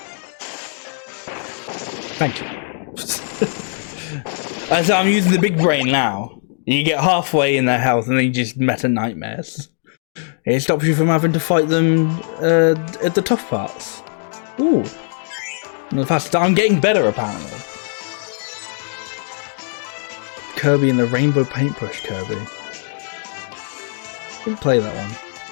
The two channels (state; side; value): silent; right; digital silence